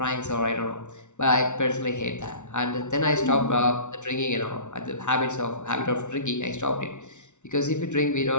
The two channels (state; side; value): late; right; 0.84 ms